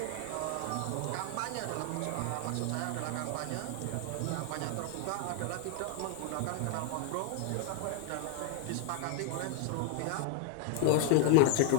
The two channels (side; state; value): both; different; correlation 0.00